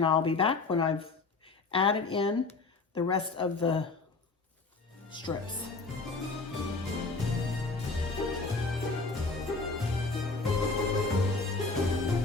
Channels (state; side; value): quieter; right; 3.9 dB